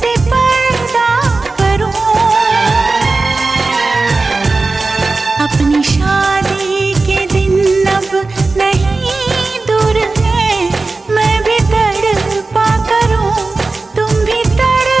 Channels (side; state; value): left; quieter; 3.6 dB